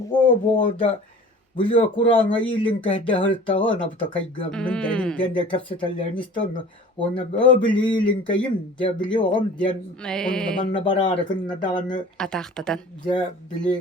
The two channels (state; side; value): normal; both; correlation 0.43